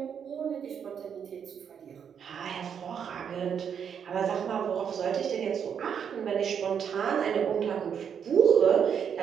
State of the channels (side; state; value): left; quieter; 7.7 dB